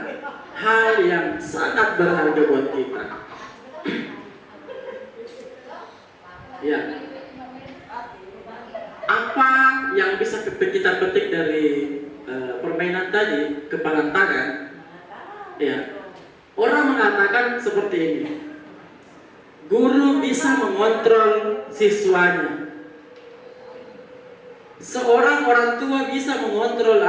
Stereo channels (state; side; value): identical; both; correlation 1.00